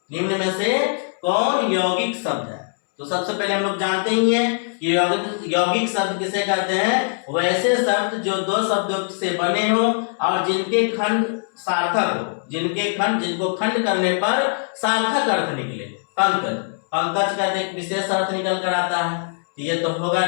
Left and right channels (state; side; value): silent; right; 64 dB below the other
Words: निम्न में से कौन यौगिक शब्द है? तो सबसे पहले हम लोग जानते ही हैं कि यौगिक शब्द किसे कहते हैं? वैसे शब्द जो दो शब्दों से बने हो और जिनके खंड सार्थक हो, जिनको खंड करने पर सार्थक अर्थ निकले। पंकज, पंकज का एक विशेष अर्थ निकल कर आता है, तो ये तो होगा